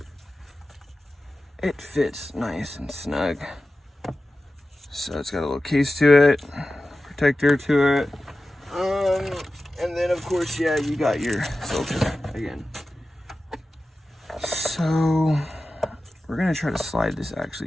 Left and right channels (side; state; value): both; normal; correlation 0.94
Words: it fits nice and snug. So it's got a little case to it, protector to it. And then of course, yeah, you got your filter again. So we're gonna try to slide this